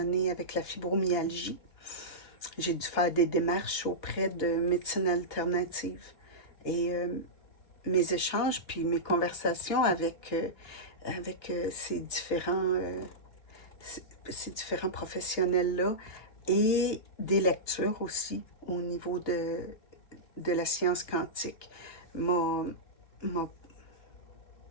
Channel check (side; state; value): right; late; 3.0 ms